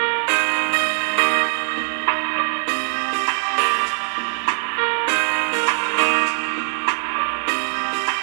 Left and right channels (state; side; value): silent; left; 65 dB below the other